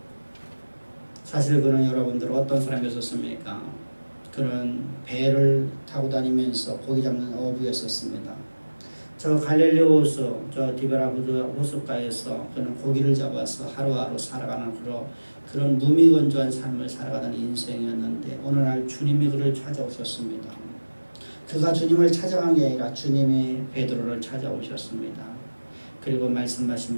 사실 그는 여러분들 어떤 사람이었습니까? 그는 배를 타고 다니면서 고기 잡는 어부였었습니다. 저 갈릴리 호수, 저 디베라부드 호숫가에서 그는 고기를 잡아서 하루하루 살아가는 그런 무미건조한 삶을 살아가던 인생이었는데 어느 날 주님이 그를 찾아오셨습니다. 그가 주님을 찾아간 게 아니라 주님이 베드로를 찾아오셨습니다. 그리고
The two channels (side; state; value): both; inverted; correlation -1.00